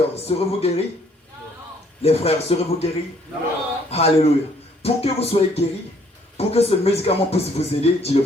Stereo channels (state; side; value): normal; both; correlation 0.64